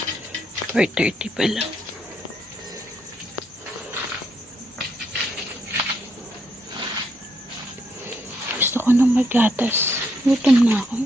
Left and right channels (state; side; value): normal; both; correlation 0.76